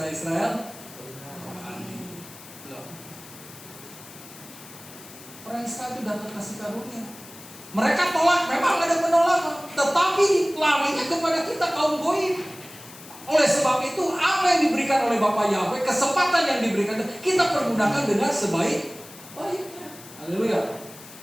Orang Israel itu dapat kasih karunia. Mereka tolak, memang ada penolakan, tetapi larinya kepada kita kaum goyim. Oleh sebab itu, apa yang diberikan oleh Bapa Yahweh, kesempatan yang diberikan, kita pergunakan dengan sebaik-baiknya. Haleluya.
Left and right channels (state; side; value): noise; left; hiss, 18 dB below the sound